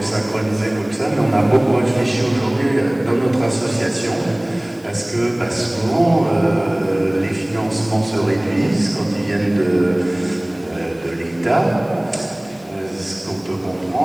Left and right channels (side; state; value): left; noise; hiss, 28 dB below the sound